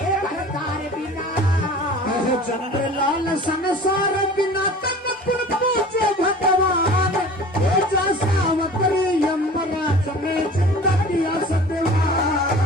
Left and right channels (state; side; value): normal; both; correlation 0.42